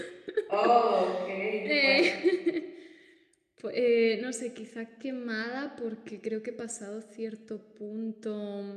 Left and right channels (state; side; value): identical; both; correlation 1.00